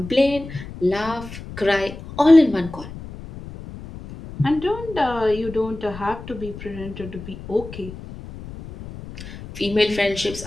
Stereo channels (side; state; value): left; noise; rumble, 13 dB below the sound